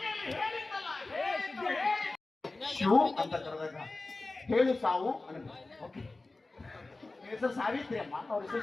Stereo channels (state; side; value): quieter; right; 3.2 dB